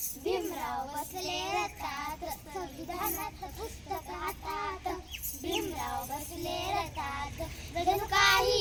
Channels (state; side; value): identical; both; correlation 1.00